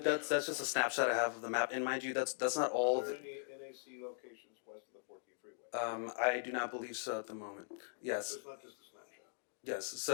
That's just a snapshot I have of the map. And mind you, that's not all. Are there any NAC locations west of the 14th Freeway? I do not believe so at the moment. Yes. So it's not just a snapshot. Yes.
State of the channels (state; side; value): silent; right; digital silence